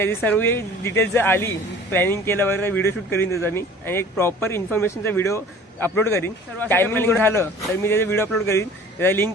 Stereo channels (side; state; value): both; normal; correlation 0.47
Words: सर्व डिटेल्स जर आली, प्लॅनिंग केलं वगैरे व्हिडिओ शूट करीन त्याचा मी, आणि एक प्रॉपर इन्फॉर्मेशनचा व्हिडिओ अपलोड करीन. टायमिंग झालं तर मी त्याचा व्हिडिओ अपलोड करीन. त्याचा